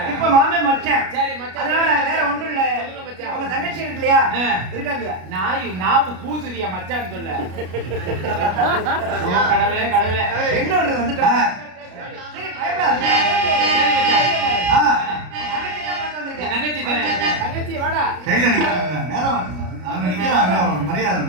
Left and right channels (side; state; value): left; late; 33 ms